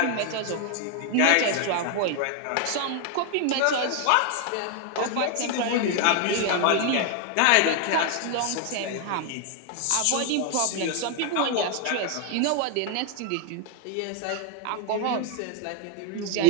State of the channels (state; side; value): different; both; correlation 0.00